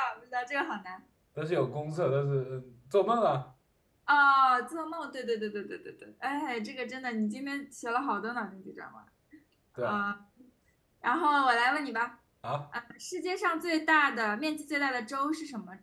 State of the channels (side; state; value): both; identical; correlation 1.00